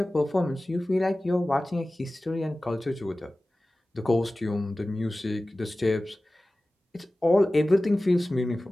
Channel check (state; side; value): normal; both; correlation 0.97